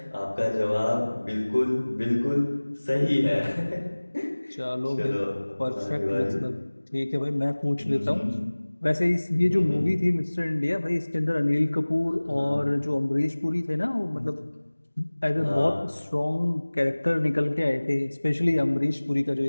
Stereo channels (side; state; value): both; inverted; correlation -1.00